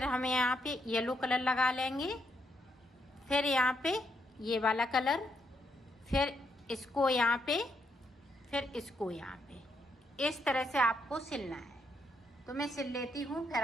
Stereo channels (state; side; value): normal; both; correlation 0.77